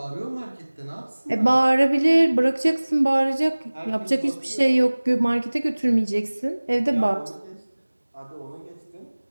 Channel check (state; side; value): inverted; both; correlation -1.00